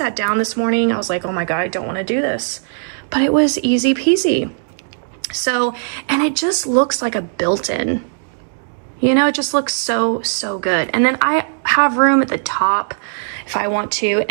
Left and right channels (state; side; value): silent; left; digital silence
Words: down this morning, I was like, oh my God, I don't want to do this, but it was easy peasy. So, and it just looks like a built-in. You know, it just looks so good. And then I have room at the top if I want to.